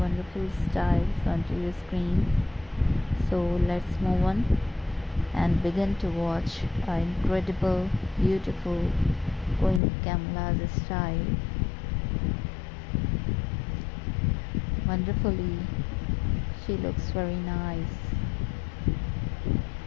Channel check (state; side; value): drops out; right; at 9.8 s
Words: styles onto your screens, so let's move on and begin to watch our incredible, beautiful Queen Camilla's style. Wonderfully, she looks very nice,